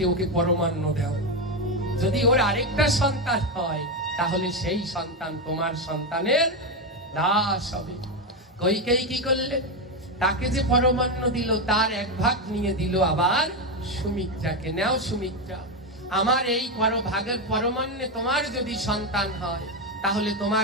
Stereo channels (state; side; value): normal; both; correlation 0.10